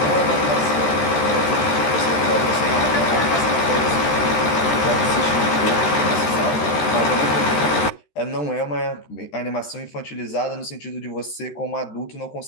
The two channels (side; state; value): right; late; 13 ms